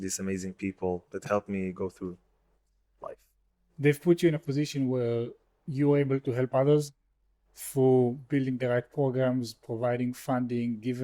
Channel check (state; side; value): identical; both; correlation 1.00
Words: amazing people that helped me go through life. They've put you in a position where you're able to help others through building the right programs, providing funding,